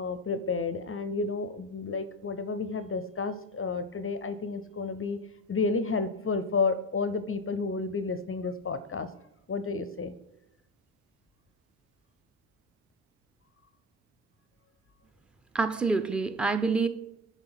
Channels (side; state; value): both; normal; correlation 0.18